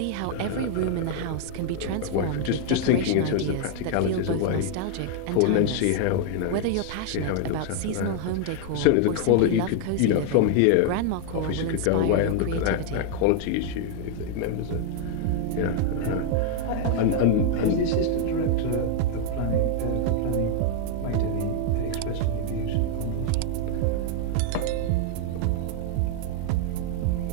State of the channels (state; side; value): different; both; correlation 0.00